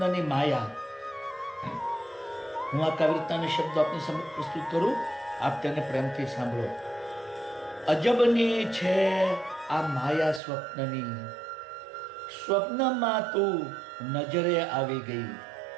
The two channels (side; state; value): left; drops out; at 10.4 s